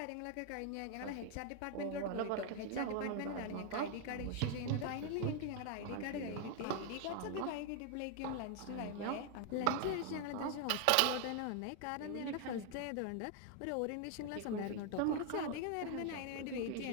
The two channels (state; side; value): different; both; correlation 0.00